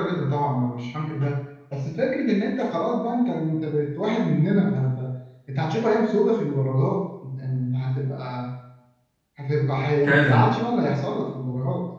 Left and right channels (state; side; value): identical; both; correlation 1.00